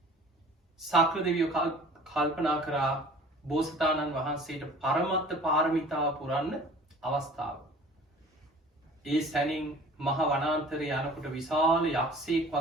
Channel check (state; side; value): normal; both; correlation 0.46